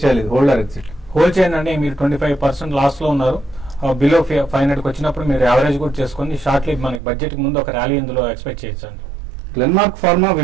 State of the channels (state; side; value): drops out; left; at 7.0 s